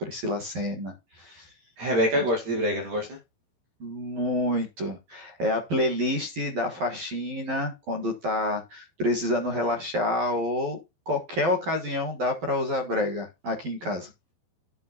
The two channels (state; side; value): late; left; 11 ms